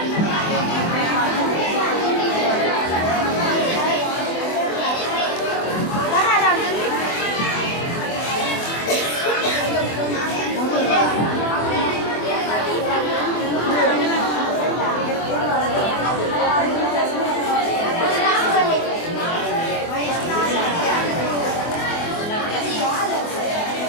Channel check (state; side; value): late; right; 24 ms